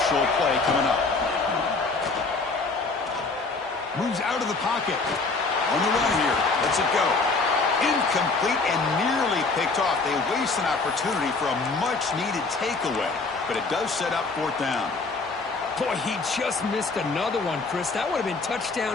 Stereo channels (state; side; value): quieter; right; 3.9 dB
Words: play coming up. Moves out of the pocket. On the run here. Lets it go. Incomplete and nearly picked off. They waste an opportunity for a much-needed takeaway. But it does set up fourth down. Boy, he just missed another one, Chris. That would have been